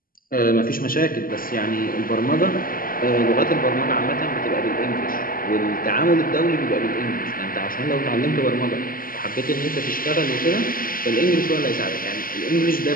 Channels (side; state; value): right; late; 0.42 ms